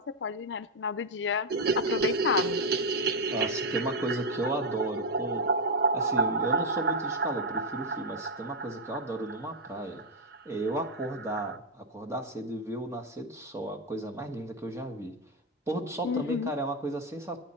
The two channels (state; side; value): normal; both; correlation 0.01